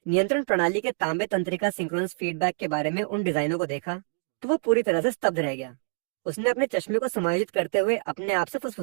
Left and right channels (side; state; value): left; silent; digital silence